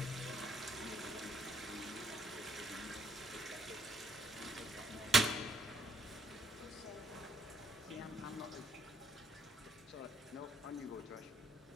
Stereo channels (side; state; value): both; normal; correlation 0.69